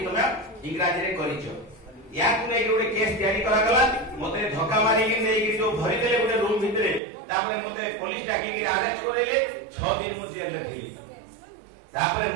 तुमे इंग्रजी रे करिछो या कुने गोटे केस तैयारी करा गला मते धक्का मारी के नै जो भरि देले गोटे रूम भितरे तापर मते पुलिस डाकी के अरेस्ट करेले 6 दिन मु जेल रे थिली तापर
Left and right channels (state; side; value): drops out; left; at 7.0 s